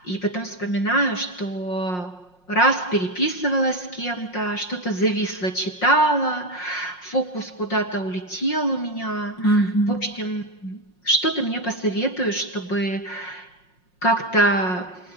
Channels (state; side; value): late; right; 5.6 ms